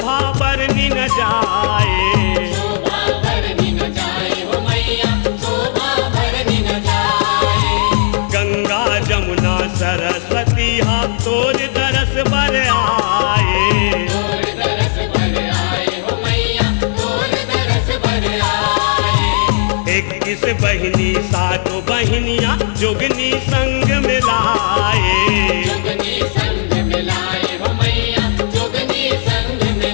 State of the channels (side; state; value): right; silent; digital silence